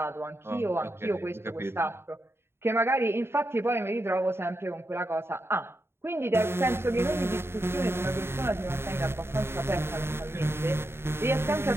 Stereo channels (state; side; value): late; left; 0.12 ms